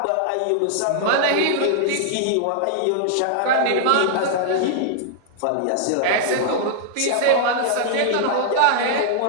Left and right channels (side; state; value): both; different; correlation -0.01